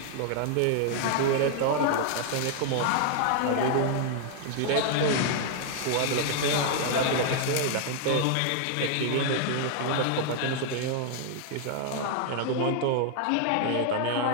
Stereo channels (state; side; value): different; both; correlation 0.00